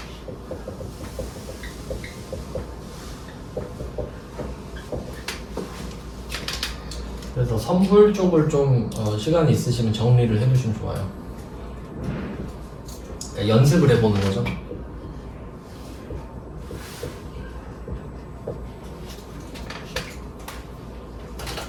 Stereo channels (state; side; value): identical; both; correlation 1.00